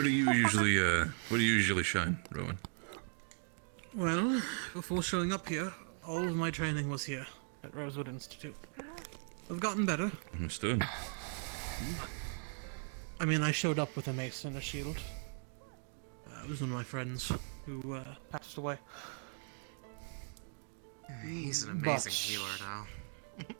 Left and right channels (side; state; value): left; silent; 52 dB below the other